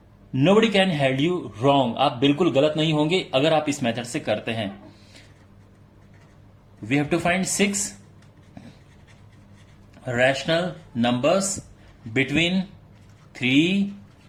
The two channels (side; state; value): both; identical; correlation 1.00